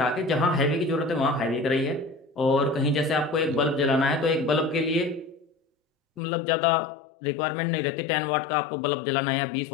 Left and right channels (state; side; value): drops out; right; at 6.2 s